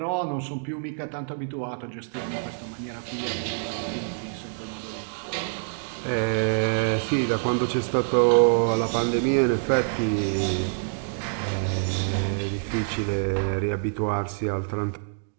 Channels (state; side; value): silent; left; digital silence